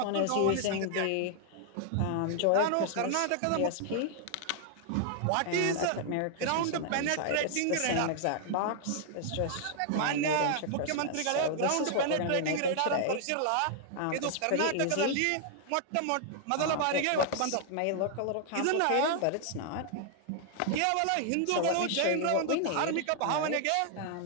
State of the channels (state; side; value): different; both; correlation 0.00